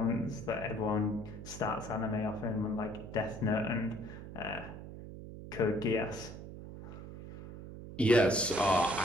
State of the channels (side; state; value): right; noise; hum, 12 dB below the sound